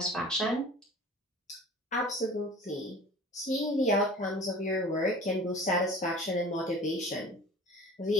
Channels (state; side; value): normal; both; correlation 0.42